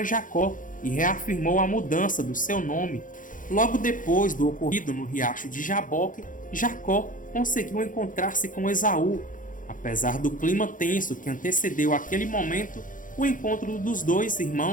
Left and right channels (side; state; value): right; late; 0.38 ms